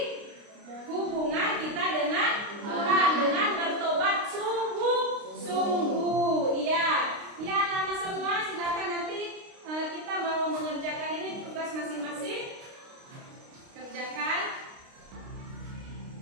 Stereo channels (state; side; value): late; left; 29 ms